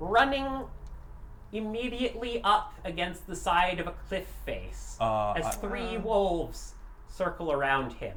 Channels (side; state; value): both; identical; correlation 1.00